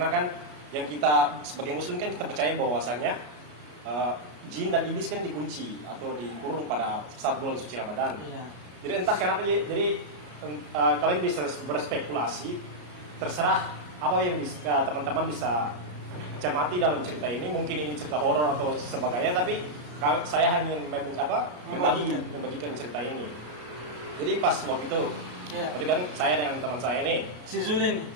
kan yang kita sebagai muslim kan kita percaya bahwasanya jin dan iblis kan dikunci atau dikurung pada saat bulan suci Ramadan. Jadi entah kenapa, jadi kalian bisa berspekulasi, terserah apa yang bisa teman-teman bisa cermati dalam cerita ini. Mungkin ini cerita horor atau sebagainya, tapi saya hanya membagikan cerita ini. Jadi pas waktu itu, tadi kan saya dan teman saya ini, si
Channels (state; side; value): late; left; 33 ms